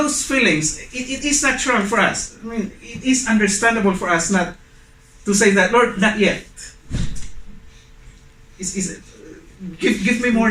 feelings, it is natural for us. I mean, it is understandable for us not to say that, Lord, not yet. Give me more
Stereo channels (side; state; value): both; identical; correlation 1.00